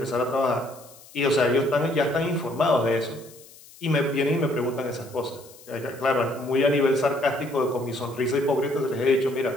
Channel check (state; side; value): noise; left; hiss, 22 dB below the sound